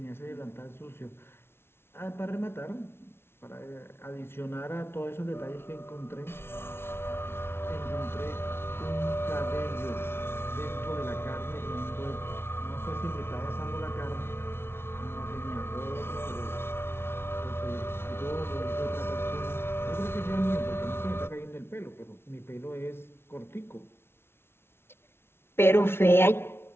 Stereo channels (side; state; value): right; late; 0.12 ms